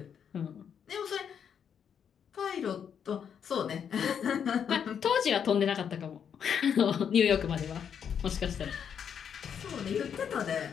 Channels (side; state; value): right; quieter; 7.8 dB